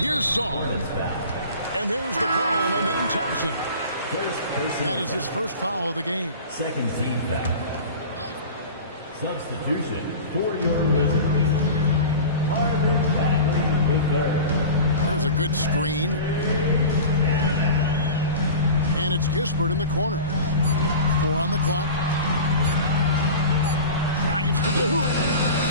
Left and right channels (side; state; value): both; inverted; correlation -0.35